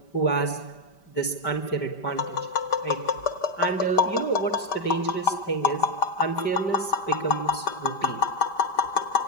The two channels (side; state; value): right; late; 5.1 ms